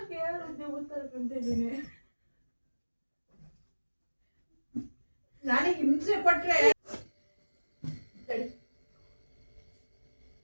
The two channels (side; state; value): both; inverted; correlation -1.00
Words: ಹೇಳಿದ್ದೆ ಉತ್ತರ ಕಂತಿದ್ದೀನಿ. ನನಗೆ ಹಿಂಸೆ ಕೊಟ್ರೆ